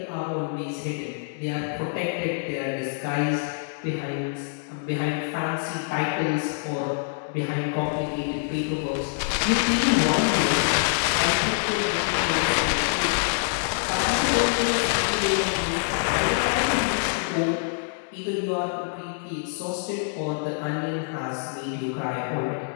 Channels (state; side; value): silent; right; digital silence